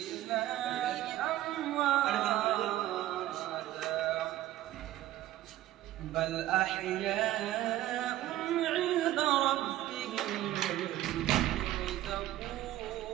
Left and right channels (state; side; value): quieter; left; 14.3 dB